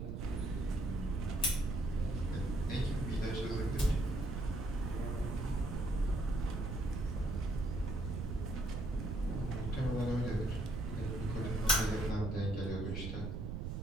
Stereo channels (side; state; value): right; noise; rumble, 3 dB below the sound